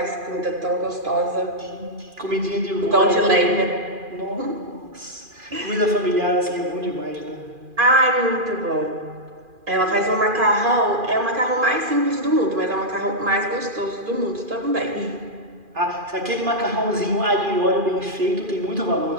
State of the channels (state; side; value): late; left; 2.4 ms